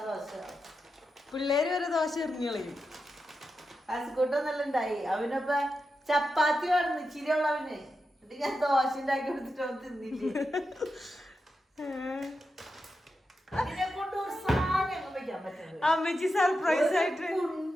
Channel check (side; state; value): both; normal; correlation 0.89